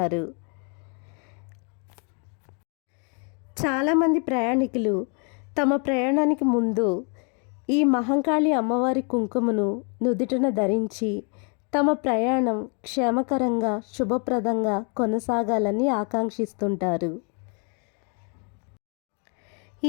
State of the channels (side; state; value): right; quieter; 38.3 dB